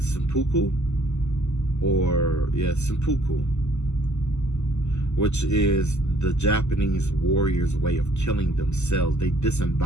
seppuku. Or, yeah, seppuku, which is the Japanese warriors' way of killing themselves. They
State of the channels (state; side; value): late; right; 0.83 ms